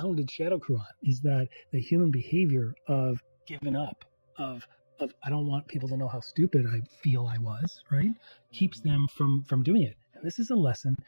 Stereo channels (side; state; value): both; inverted; correlation -1.00